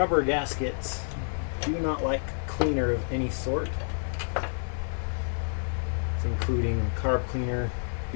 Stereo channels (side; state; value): right; silent; digital silence